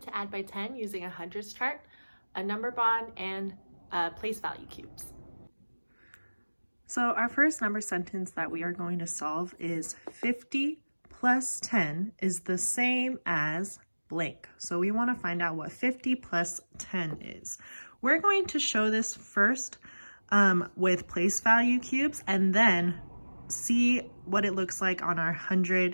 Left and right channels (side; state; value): both; inverted; correlation -1.00